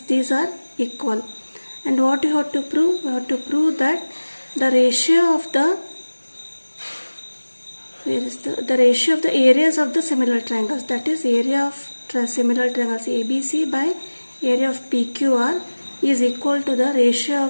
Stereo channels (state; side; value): inverted; both; correlation -1.00